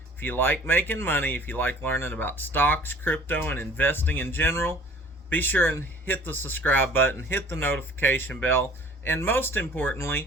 If you like making money, if you like learning about stocks, crypto, and investing in general, be sure and hit the subscribe button, hit the notification bell, and most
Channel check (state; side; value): normal; both; correlation 0.50